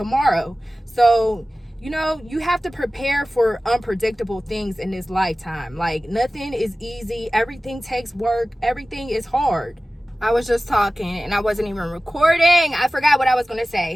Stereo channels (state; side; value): normal; both; correlation 0.96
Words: So, you know, you have to prepare for unpredictable things in this lifetime. Like, nothing is easy. Everything takes work. Everything is hard. I was just talking and I wasn't even recording. I forgot what I was going to